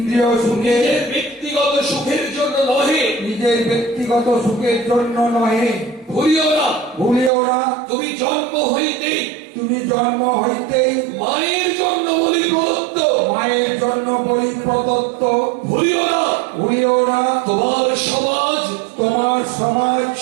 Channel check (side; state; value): left; drops out; at 7.3 s